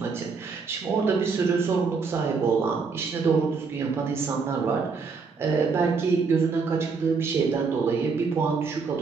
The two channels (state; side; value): quieter; left; 4.9 dB